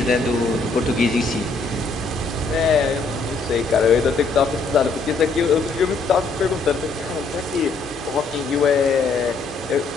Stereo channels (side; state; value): right; quieter; 4.0 dB